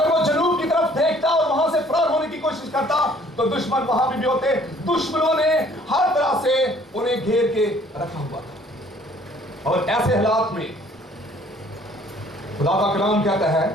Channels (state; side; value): normal; both; correlation 0.57